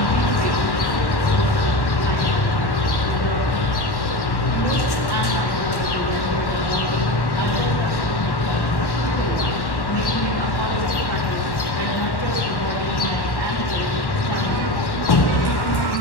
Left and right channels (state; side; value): late; right; 1.1 ms